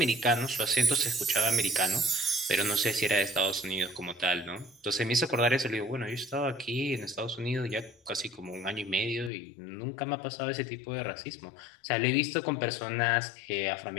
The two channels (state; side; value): drops out; right; at 9.3 s